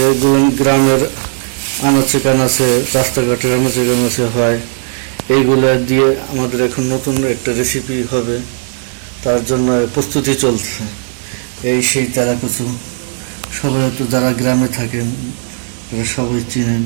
এগুলো গ্রামের আনাচে কানাচে, রাস্তাঘাটের আনাচে কানাচে হয়। এইগুলো দিয়ে আমাদের এখন নতুন একটা রেসিপি হবে, তার জন্য প্রস্তুতি চলছে। এই সেই তেলাকুচু, সবাই তো যারা গ্রামে থাকেন তারা সবাই চিনেন,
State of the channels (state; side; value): silent; left; digital silence